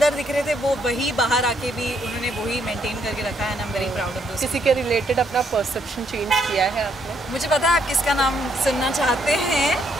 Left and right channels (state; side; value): normal; both; correlation 0.72